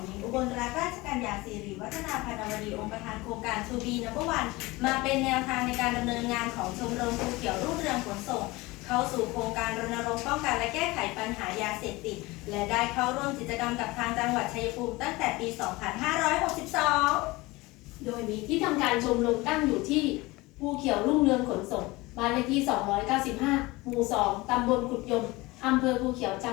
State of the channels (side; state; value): right; quieter; 21.8 dB